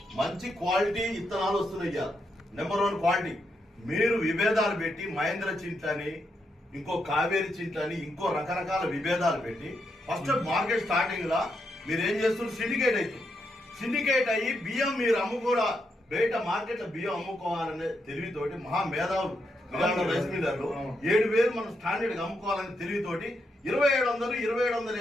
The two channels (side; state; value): both; normal; correlation 0.81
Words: మంచి క్వాలిటీ విత్తనాలు వస్తున్నాయి. Number 1 quality. మీరు విభేదాలు పెట్టి మహేంద్ర చింట్లని ఇంకో కావేరి చింట్లని ఇంకో రకరకాల విభేదాలు పెట్టి ఫస్ట్ మార్కెట్ స్టార్టింగ్ లా మీరు ఏం చేస్తున్నారు సిండికేట్ అవుతుంది. సిండికేట్ అయ్యి బియ్యం మీరు అమ్ముకోరా బయట మార్కెట్ లో బియ్యం అమ్ముకోవాలనే తెలివితోటి మహా మేధావులు రైస్ మిల్లర్లు 7,000 మనం స్టాండర్డ్ అమ్ముకోవాలని తెలివితోటి 2,700,